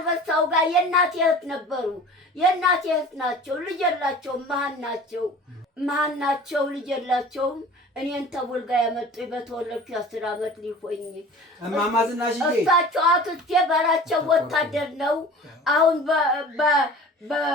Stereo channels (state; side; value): normal; both; correlation 0.42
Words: ጋር የእናቴ እህት ነበሩ። የእናቴ እህት ናቸው። ልጅ የላቸውም። መሀን ናቸው። ልጅ የላቸውም። እኔን ተቡልጋ ያመጡኝ በተወለድኩ 10 ዓመት ሊሆኝ። እማማ ዝናሽዬ እሳቸው አክስቴ በራቸው ወታደር ነው። አሁን